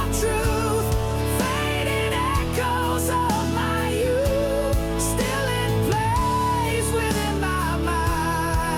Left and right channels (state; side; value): identical; both; correlation 1.00